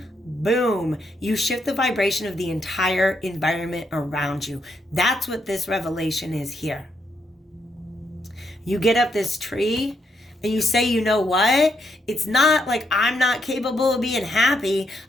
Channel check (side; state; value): both; normal; correlation 0.78